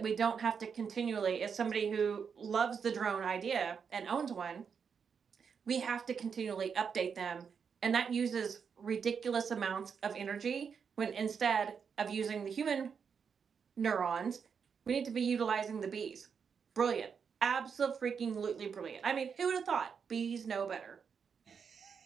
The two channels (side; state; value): left; quieter; 6.5 dB